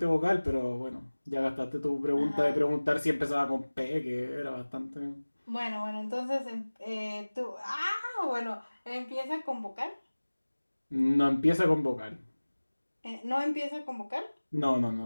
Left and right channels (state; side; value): inverted; both; correlation -1.00